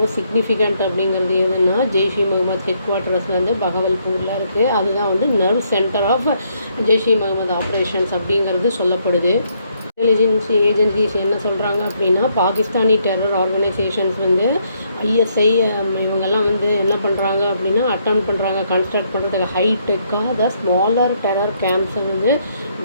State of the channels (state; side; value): inverted; both; correlation -0.72